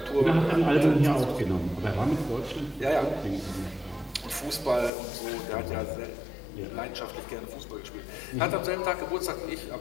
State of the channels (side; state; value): right; drops out; at 4.9 s